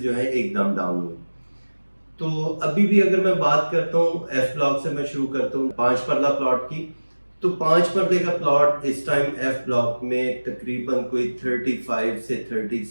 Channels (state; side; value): inverted; both; correlation -1.00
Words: जो है एकदम डाउन हुए। तो अभी भी अगर मैं बात करता हूँ एफ ब्लॉक से मैं शुरू करता हूँ 5 परला प्लॉट की, तो 5 परदे का प्लॉट इस टाइम एफ ब्लॉक में तकरीबन कोई 35 से